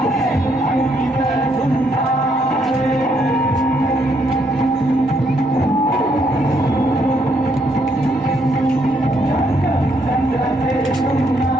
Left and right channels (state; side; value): normal; both; correlation 0.72